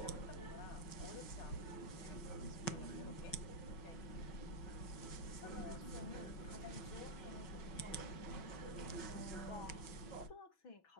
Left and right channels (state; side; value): late; right; 6.1 ms